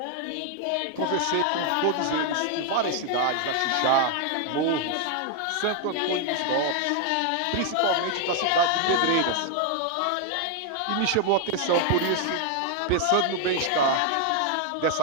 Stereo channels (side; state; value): both; different; correlation 0.00